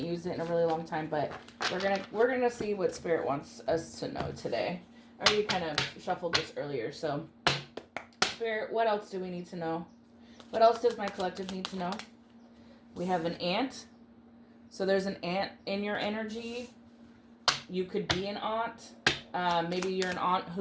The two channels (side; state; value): both; identical; correlation 1.00